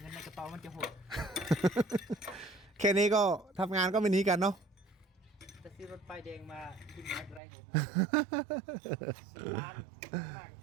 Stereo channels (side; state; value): left; drops out; at 7.4 s